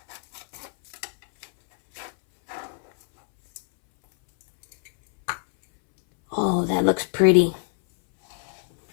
Oh, that looks pretty.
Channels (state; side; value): silent; right; 63 dB below the other